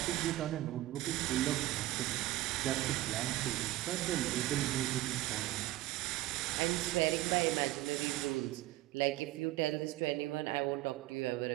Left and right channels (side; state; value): left; quieter; 16.6 dB